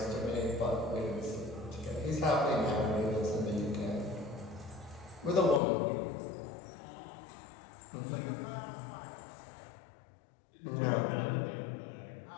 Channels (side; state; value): right; drops out; at 5.6 s